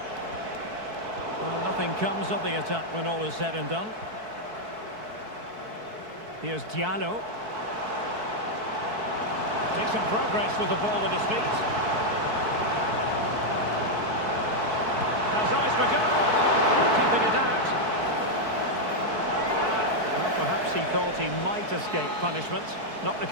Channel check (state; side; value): late; left; 4.6 ms